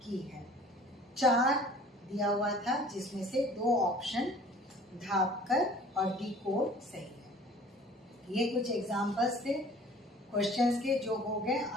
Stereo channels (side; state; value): both; normal; correlation 0.49